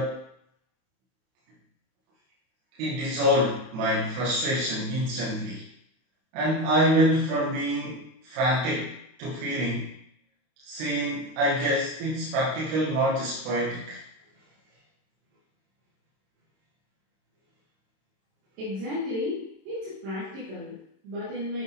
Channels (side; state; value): left; late; 32 ms